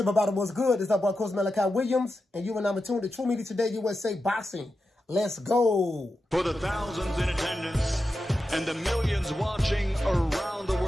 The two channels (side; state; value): both; normal; correlation 0.90